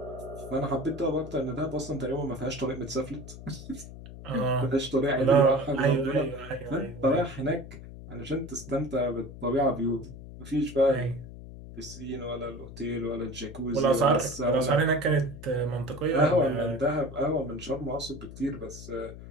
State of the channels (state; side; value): noise; left; hum, 14 dB below the sound